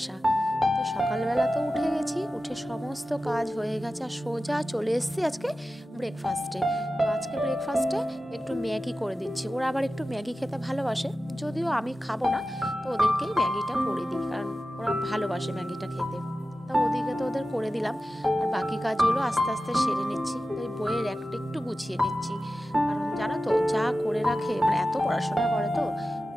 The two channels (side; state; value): both; normal; correlation 0.94